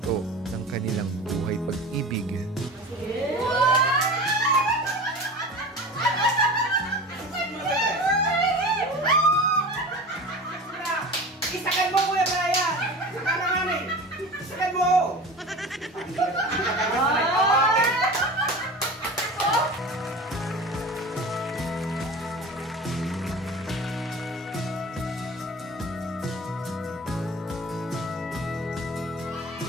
ng kanilang buhay pag-ibig. Isakan mo, Kuya Brian! Isakan naman eh! Isakan mo!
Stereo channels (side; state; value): both; normal; correlation 0.34